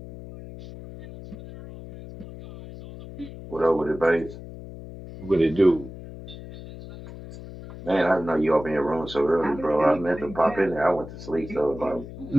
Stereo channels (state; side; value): noise; left; hum, 13 dB below the sound